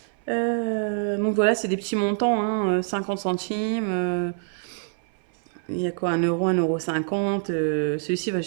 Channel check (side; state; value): left; silent; 58 dB below the other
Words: Donc voilà, c'est des petits montants, hein, 50 centimes. Il y a quoi, 1 euro, 1,50 €. Celui-ci va